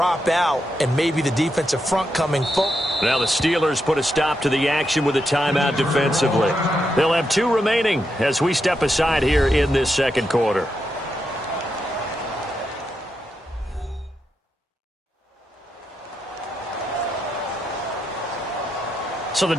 out and maybe the defensive front coming full. Now the Steelers put a stop to the action with a timeout defensively. They'll have 2 remaining as we step aside here in this second quarter. So the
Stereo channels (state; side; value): normal; both; correlation 0.84